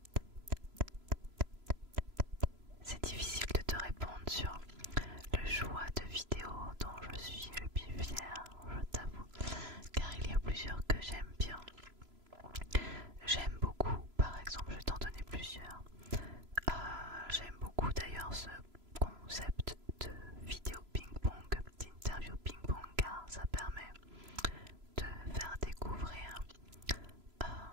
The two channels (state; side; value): late; left; 3.0 ms